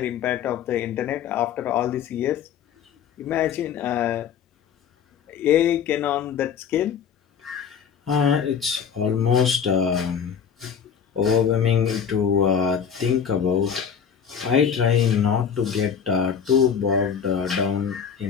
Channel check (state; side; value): quieter; right; 7.4 dB